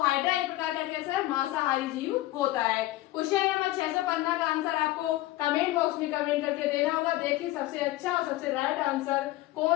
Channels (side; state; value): right; quieter; 16.9 dB